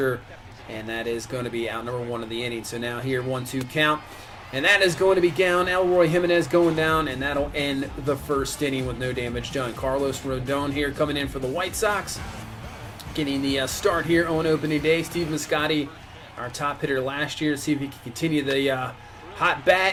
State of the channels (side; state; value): both; identical; correlation 1.00